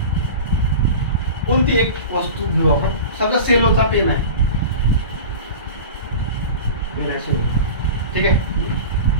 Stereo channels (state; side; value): inverted; both; correlation -0.32